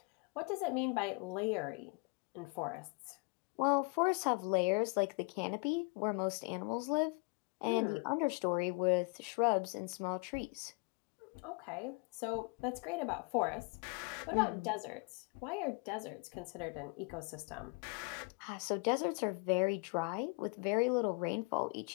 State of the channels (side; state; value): right; quieter; 31.8 dB